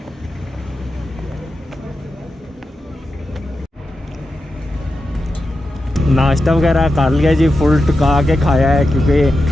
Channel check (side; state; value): both; normal; correlation 0.90